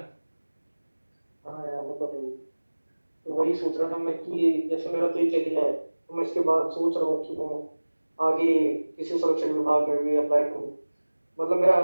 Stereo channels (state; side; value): inverted; both; correlation -1.00